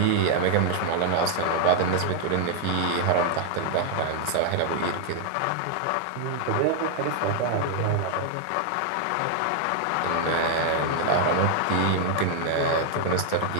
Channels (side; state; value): both; different; correlation 0.00